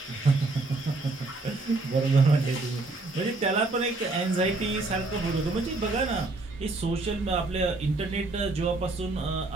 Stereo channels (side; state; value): left; quieter; 3.2 dB